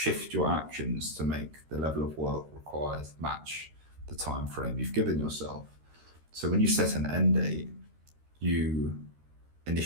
your actions to make the level of work required match the time frame you've given yourself. So when you set an end date, you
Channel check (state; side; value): late; left; 13 ms